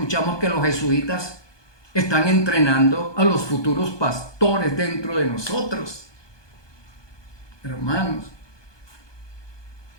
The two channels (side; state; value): right; late; 1.2 ms